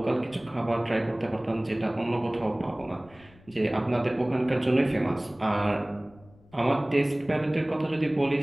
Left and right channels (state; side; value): noise; left; rumble, 26 dB below the sound